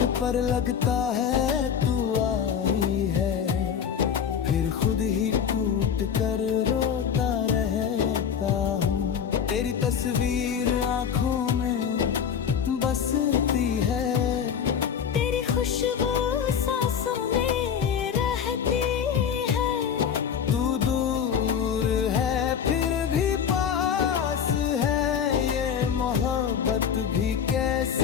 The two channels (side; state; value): right; quieter; 7.8 dB